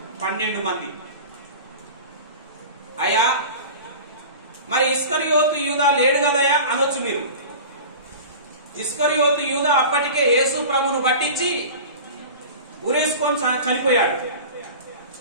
12 మంది. అయ్యా మరి ఇస్కరియోతు యూదా లేడు కదయా అనొచ్చు మీరు. ఇస్కరియోతు యూదా అప్పటికే యేసు ప్రభువును పట్టించి ఉరేసుకొని చనిపోయాడు.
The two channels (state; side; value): inverted; both; correlation -0.35